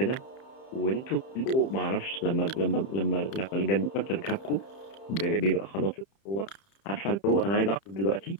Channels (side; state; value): right; late; 30 ms